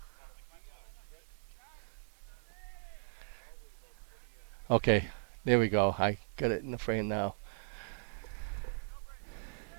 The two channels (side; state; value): left; silent; digital silence